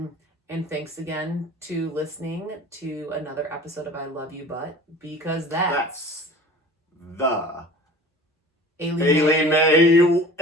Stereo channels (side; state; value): both; normal; correlation 0.43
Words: And thanks again to listening to another episode of I Love You But, because That's the Maley Way.